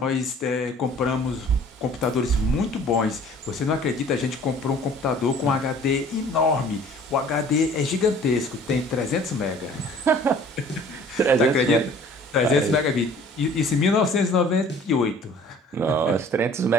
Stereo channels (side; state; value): both; normal; correlation 0.51